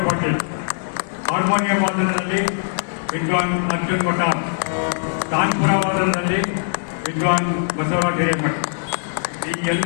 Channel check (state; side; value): silent; right; digital silence